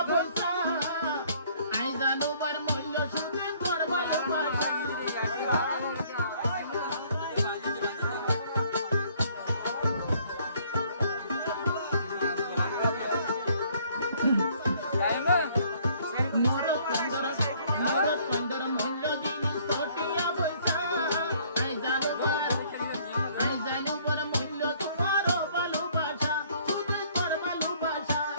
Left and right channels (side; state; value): both; inverted; correlation -0.61